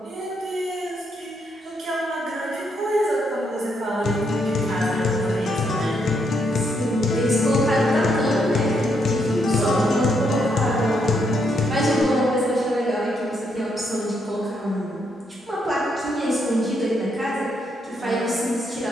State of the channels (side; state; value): both; normal; correlation 0.77